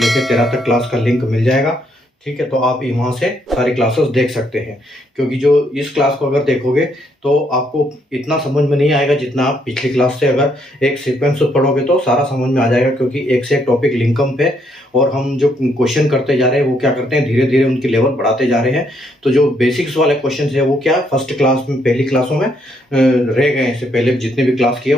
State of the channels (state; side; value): normal; both; correlation 0.73